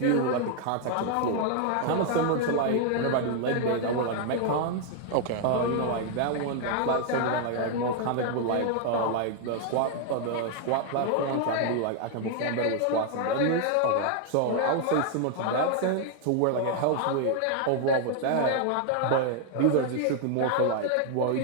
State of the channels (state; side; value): different; both; correlation 0.00